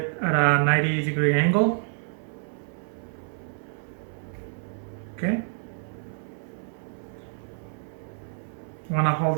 at a 90-degree angle. Okay, you want to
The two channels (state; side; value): silent; left; 59 dB below the other